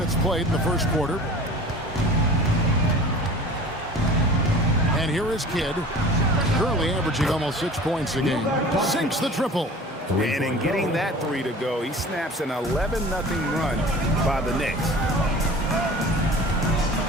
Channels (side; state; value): both; normal; correlation 0.41